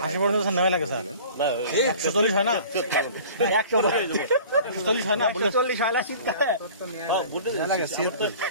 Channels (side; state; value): both; inverted; correlation -0.45